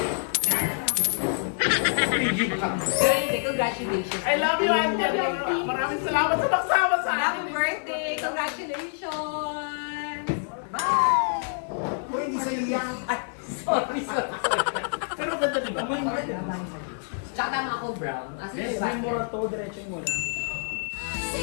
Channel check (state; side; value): silent; right; digital silence